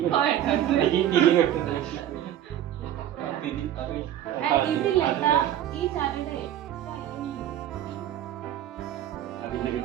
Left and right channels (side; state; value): left; quieter; 11.3 dB